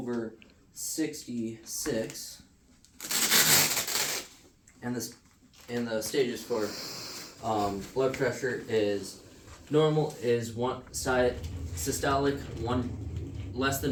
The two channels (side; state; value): both; identical; correlation 1.00